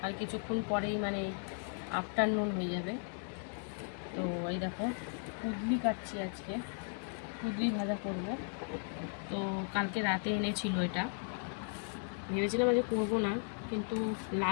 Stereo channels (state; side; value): silent; right; 54 dB below the other